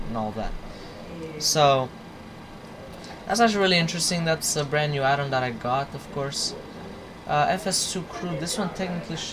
and all that. So that's actually really interesting. That's a brand new add-on that I got, of course. FS2 crew. This one technically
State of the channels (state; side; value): identical; both; correlation 1.00